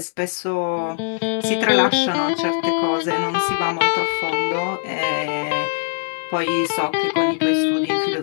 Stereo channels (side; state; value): right; silent; digital silence